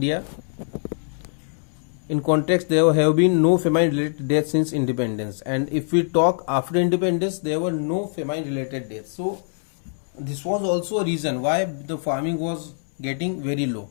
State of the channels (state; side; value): silent; right; 63 dB below the other